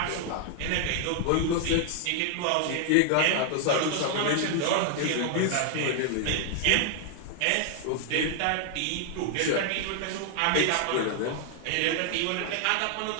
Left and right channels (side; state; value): both; different; correlation 0.00